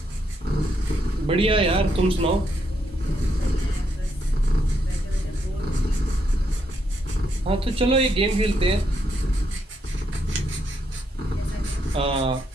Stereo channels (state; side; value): normal; both; correlation 0.77